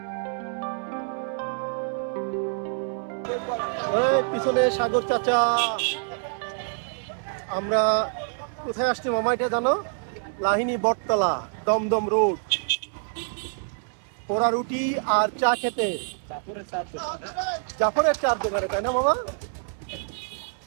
পিছনে সাগর চাচা। আমরা কোথায় আসছি মামা এটা জানো? লাহিনী বটতলা, দমদম রোড, পোড়া রুটি আর চা খেতে। জাফরের চার দোকানে, তাই না মামা?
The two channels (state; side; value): silent; left; 61 dB below the other